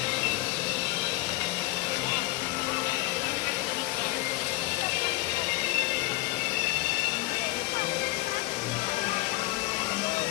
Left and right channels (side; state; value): right; quieter; 20.4 dB